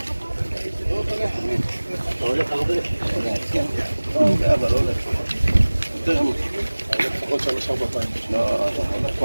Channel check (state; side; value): inverted; both; correlation -1.00